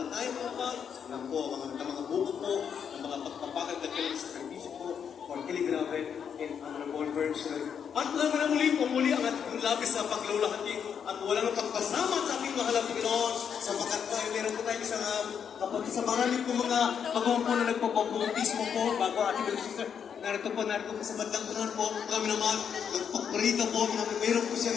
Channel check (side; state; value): right; quieter; 7.6 dB